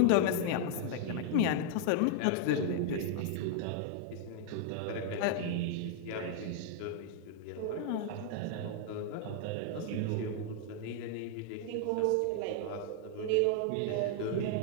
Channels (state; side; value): different; both; correlation 0.00